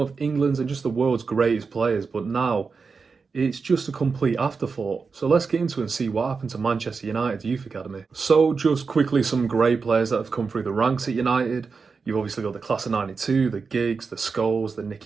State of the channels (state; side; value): quieter; left; 4.9 dB